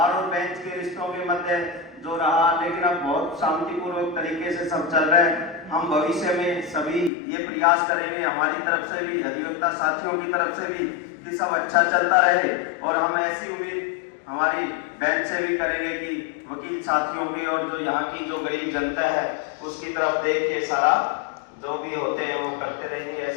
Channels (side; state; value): right; drops out; at 7.1 s